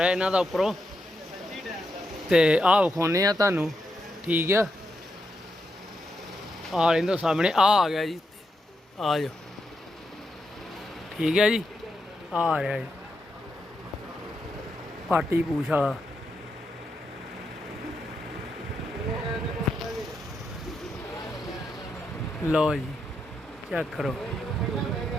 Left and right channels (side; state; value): both; normal; correlation 0.83